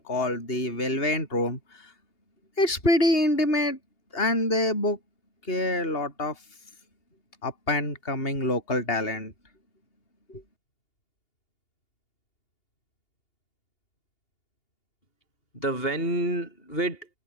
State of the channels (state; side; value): late; right; 2.8 ms